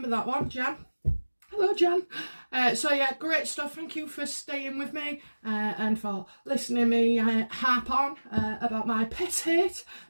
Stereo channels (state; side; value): inverted; both; correlation -1.00